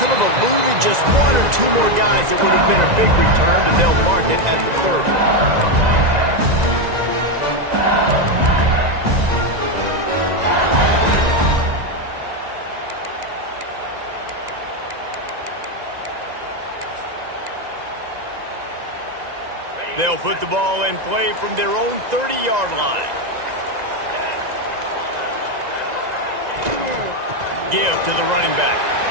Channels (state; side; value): late; left; 1.9 ms